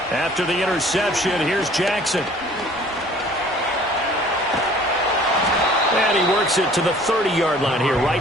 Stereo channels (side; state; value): both; normal; correlation 0.52